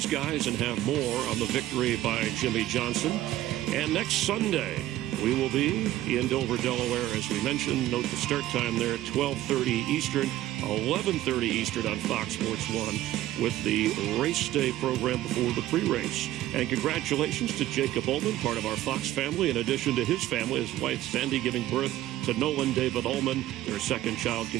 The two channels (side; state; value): left; quieter; 14.5 dB